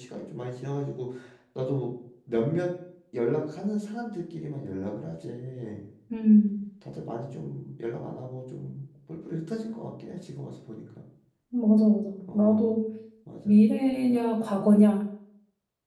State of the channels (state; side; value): identical; both; correlation 1.00